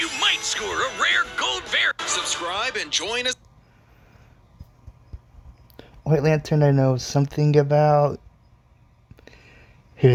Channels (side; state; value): both; identical; correlation 1.00